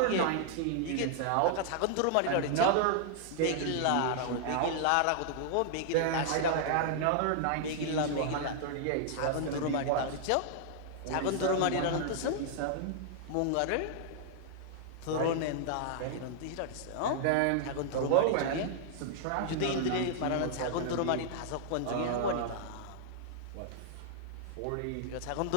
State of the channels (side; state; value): both; different; correlation -0.01